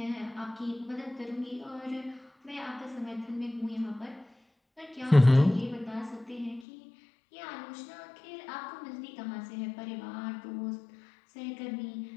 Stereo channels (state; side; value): drops out; right; at 6.7 s